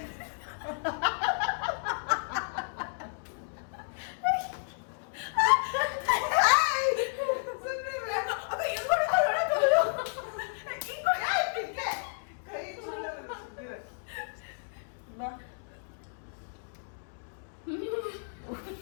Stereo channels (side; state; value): right; silent; digital silence